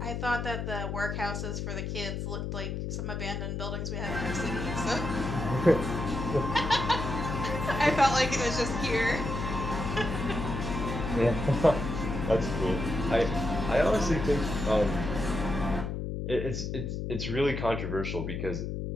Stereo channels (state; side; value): noise; left; hum, 3 dB below the sound